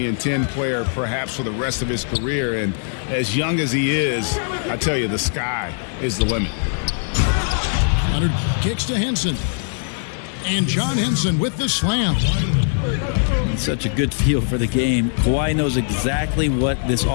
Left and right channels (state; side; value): silent; right; 65 dB below the other